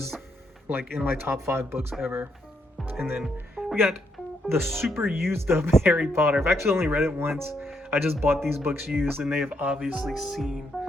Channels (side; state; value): both; normal; correlation 0.76